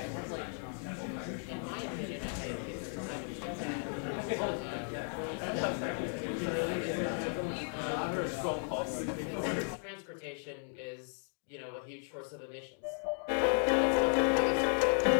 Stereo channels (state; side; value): silent; right; 54 dB below the other